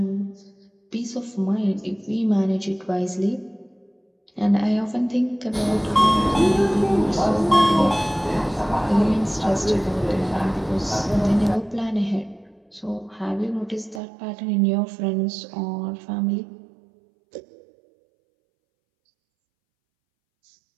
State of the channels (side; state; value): left; drops out; at 14.0 s